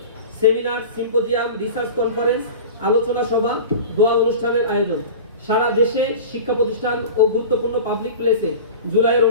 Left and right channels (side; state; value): both; inverted; correlation -0.35